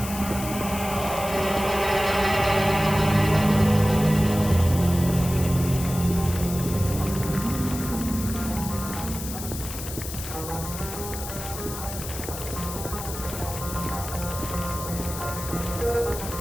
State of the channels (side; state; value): left; noise; hiss, 9 dB below the sound